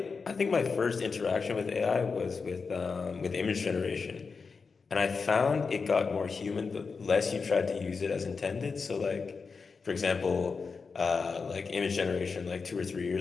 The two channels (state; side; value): quieter; right; 4.9 dB